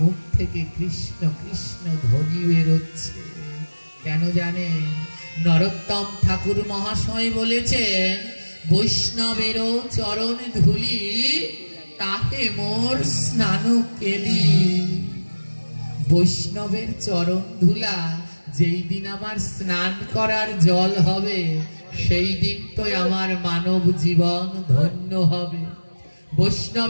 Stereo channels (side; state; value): both; inverted; correlation -1.00